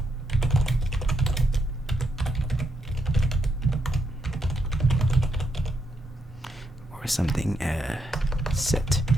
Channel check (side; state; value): both; normal; correlation 0.79